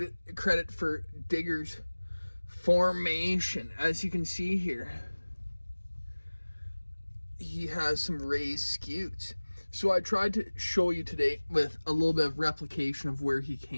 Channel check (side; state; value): both; inverted; correlation -1.00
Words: for Digger's formation. As you can see here, he has some raised scutes. So I tried to show you today with a little bit of replication of where he